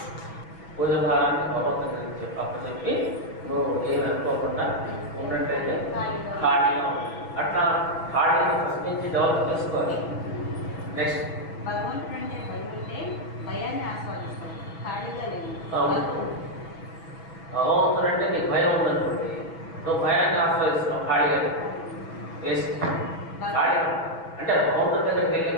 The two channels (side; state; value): right; late; 6.0 ms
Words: పూజ భారాన్ని భగవంతుని చెప్పి నువ్వు ఏమి అనుకోకుండా ఉన్నట్టయితే ఖాళీగా ఉంటుంది. అట్లా ఖాళీని ఫస్ట్ నుంచి డెవలప్ చేసుకోవాలి. నెక్స్ట్ భగవంతుడు అంటే భయం ఉంటే భయాన్ని ఆస్వాదిస్తాం, ఖాళీగా లేదు. భగవంతుడు అంటే నీకు భయం ఉందనుకోండి, నువ్వు భయాన్ని ఆస్వాదిస్తున్నావు, ఖాళీగా లేదు. వేస్ట్. ఖాళీ అంటే భగవంతుడి దగ్గరికి వెళ్ళి